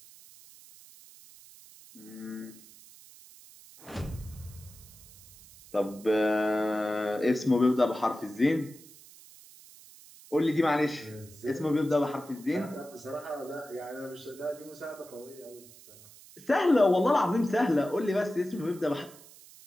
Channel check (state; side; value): noise; right; hiss, 21 dB below the sound